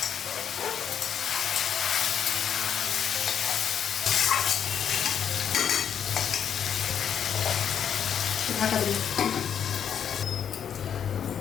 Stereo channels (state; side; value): quieter; right; 8.4 dB